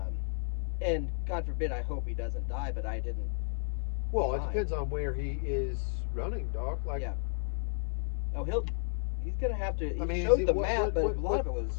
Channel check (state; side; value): silent; right; 56 dB below the other